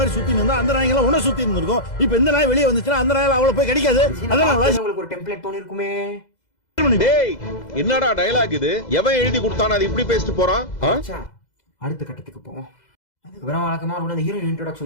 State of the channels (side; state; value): right; late; 2.0 ms